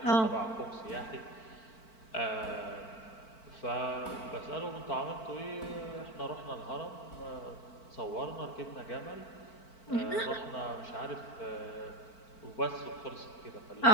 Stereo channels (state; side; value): late; right; 4.5 ms